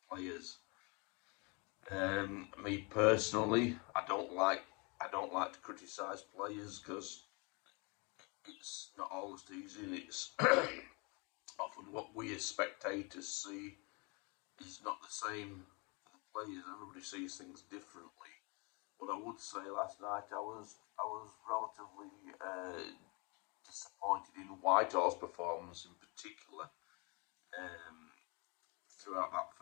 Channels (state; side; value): quieter; right; 30.8 dB